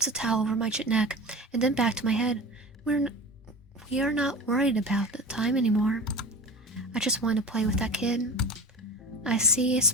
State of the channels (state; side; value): normal; both; correlation 0.32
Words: a towel over my neck and then back to my head. We are not worried about the time anymore. I just want to play with that kid. I see a